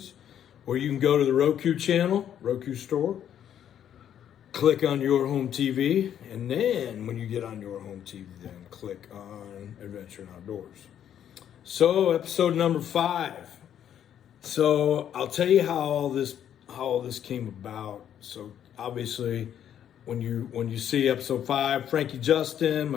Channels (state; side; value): quieter; right; 9.9 dB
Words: Or you can go to the Roku channel, Roku store, click on Your Home TV, and then when you get on Your Home TV, then click on Adventure and Outdoors. So, episode number 5. So I'll tell you how all this came about. So obviously, when you see episode 5, Frankie Justin,